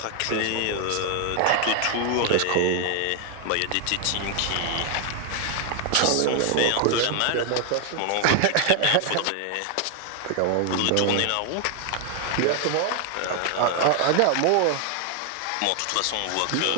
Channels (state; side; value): different; both; correlation 0.00